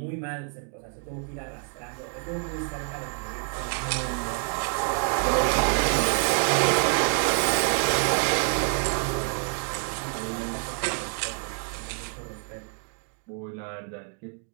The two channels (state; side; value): quieter; left; 39.2 dB